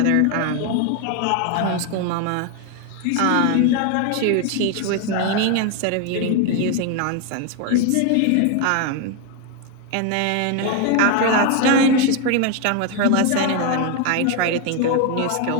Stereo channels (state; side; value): different; both; correlation 0.01